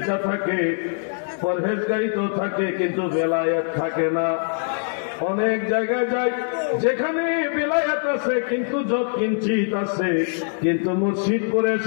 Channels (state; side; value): silent; right; digital silence